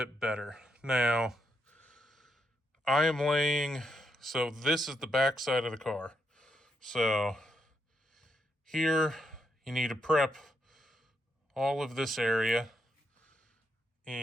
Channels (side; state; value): both; normal; correlation 0.80